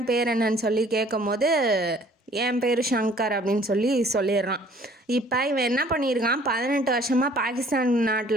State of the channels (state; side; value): normal; both; correlation 0.55